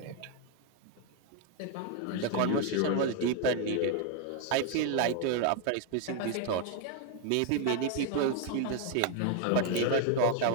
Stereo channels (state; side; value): different; both; correlation 0.00